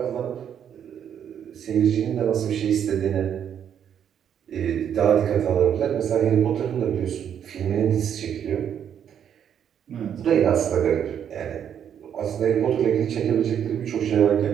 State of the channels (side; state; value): left; quieter; 8.9 dB